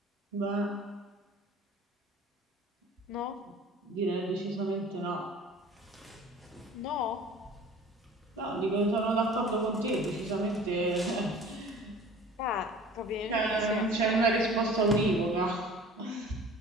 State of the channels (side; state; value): both; normal; correlation 0.45